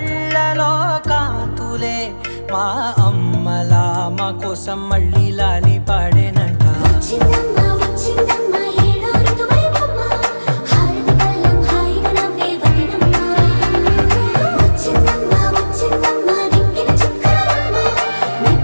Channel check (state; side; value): inverted; both; correlation -1.00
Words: కాంతులే మా అమ్మలా మా కోసం మళ్ళీ లాలి పాడేనంట.